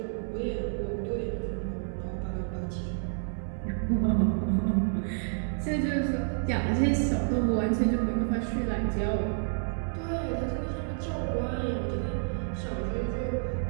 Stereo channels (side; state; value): left; silent; 58 dB below the other